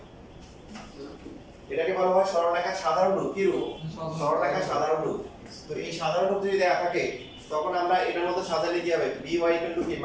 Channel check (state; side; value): identical; both; correlation 1.00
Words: এটাকে বলা হয় সরলরেখার সাধারণ রূপ। কি রূপ? সরলরেখার সাধারণ রূপ। তো এই সাধারণ রূপ যদি দেয়া থাকে তখন আমরা এটার মধ্যে সাজালে কি হবে? by কি